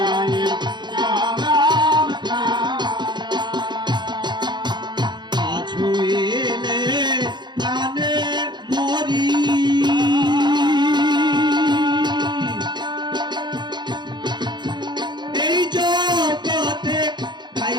ছুঁইলে প্রাণে মরি, এই জগতে তাই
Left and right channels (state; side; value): late; left; 0.21 ms